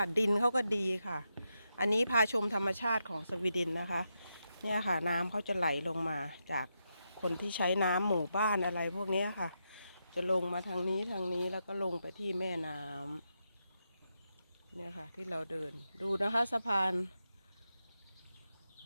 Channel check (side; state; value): both; inverted; correlation -0.85